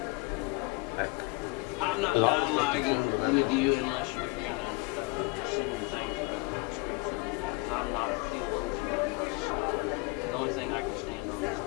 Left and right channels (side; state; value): right; quieter; 25.1 dB